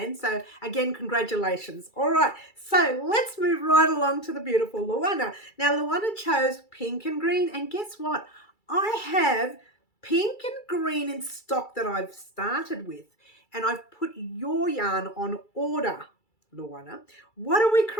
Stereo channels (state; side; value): late; right; 2.3 ms